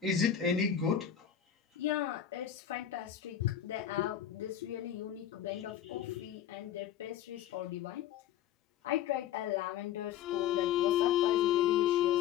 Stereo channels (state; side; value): quieter; right; 10.0 dB